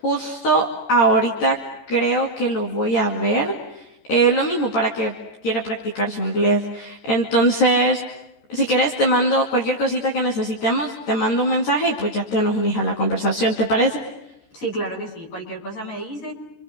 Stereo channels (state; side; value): late; right; 14 ms